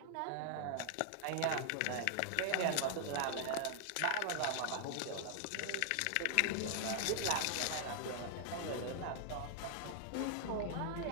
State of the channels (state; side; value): different; both; correlation 0.00